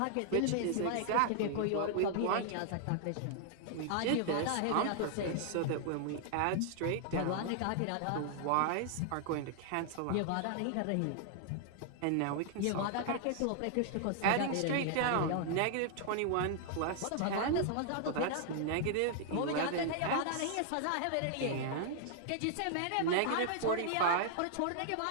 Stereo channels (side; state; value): both; different; correlation -0.01